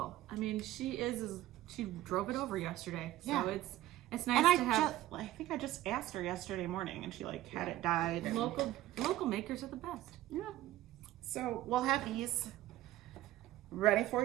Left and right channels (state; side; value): quieter; left; 14.9 dB